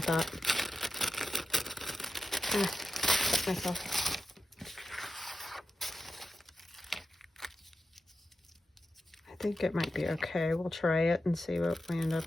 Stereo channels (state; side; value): normal; both; correlation 0.90